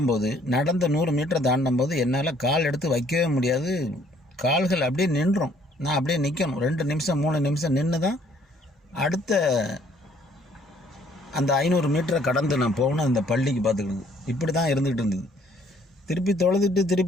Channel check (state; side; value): normal; both; correlation 0.62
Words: போது, நடந்த 100 மீட்டரை தாண்டும் போது என்னால் கால் எடுத்து வைக்கவே முடியாது. கால்கள் அப்படியே நின்றும். நான் அப்படியே நிற்கணும். 2 நிமிஷம் 3 நிமிஷம் நின்று தான் அடுத்த அந்த 500 மீட்டரை கடந்து நான் போகணும் அந்த பள்ளிக்கு. பார்த்துக்கணும், இப்படி தான் இருந்துக்கிட்டு இருந்தது. திருப்பி தொழுதுட்டு